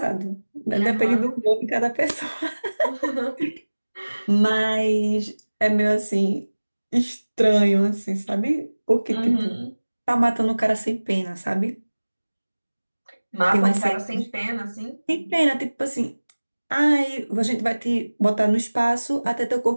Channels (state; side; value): inverted; both; correlation -1.00